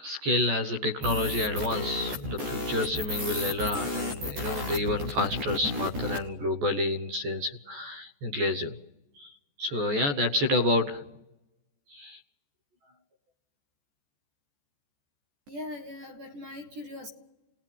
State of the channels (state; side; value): late; left; 14 ms